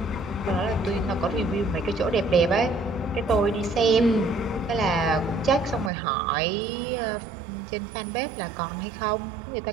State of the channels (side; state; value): left; drops out; at 5.9 s